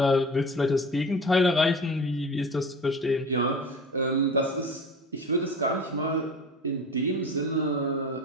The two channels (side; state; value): both; normal; correlation 0.35